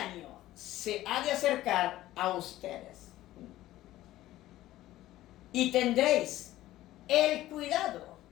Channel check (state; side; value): quieter; right; 15.2 dB